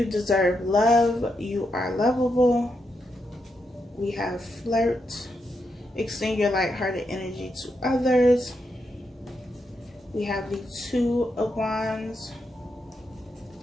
deserve love. You are lovable. We have flirt. Extend your lighthearted energy to others. We have the Two of Wands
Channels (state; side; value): normal; both; correlation 0.83